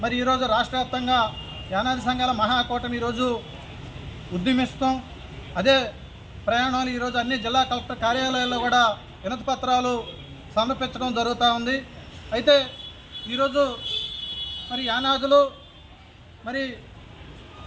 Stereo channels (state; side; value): identical; both; correlation 1.00